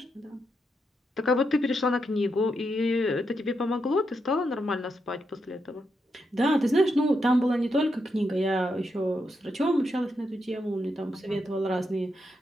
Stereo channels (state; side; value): normal; both; correlation 0.83